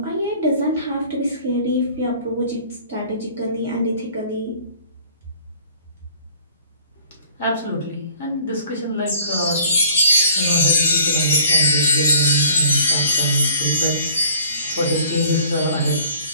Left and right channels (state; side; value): inverted; both; correlation -0.52